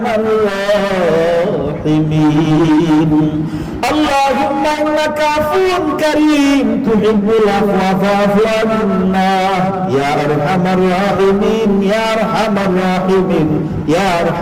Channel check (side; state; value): both; identical; correlation 1.00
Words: الراحمين. اللهم إنك عفو كريم تحب العفو فاعف عنا. يا أرحم الراحمين، يا أرحم الراحمين، يا